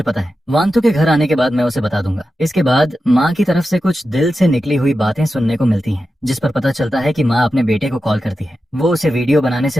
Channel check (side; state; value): both; normal; correlation 0.91